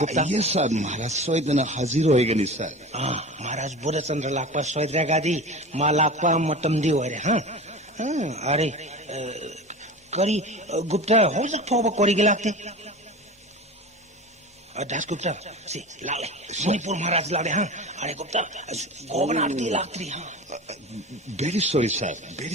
गुप्ता यस सर महाराज सोइदना हाजिर होइगनी सर महाराज बोधचंद्र लाकपा सोइद्रेगादी मा लाकपा मतम दी होरे हां अरे करी गुप्ता हो जक फोब कोरी गेलाते दासगुप्ता से लाले मणिपुर महाराज लाले हां अरे गुप्ता गवर्नर दी लात्री हां very sorry sir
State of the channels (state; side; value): normal; both; correlation 0.32